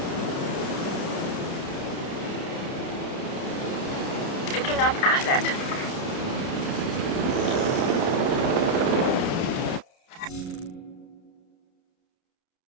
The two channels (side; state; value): right; late; 30 ms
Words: Picking up asset.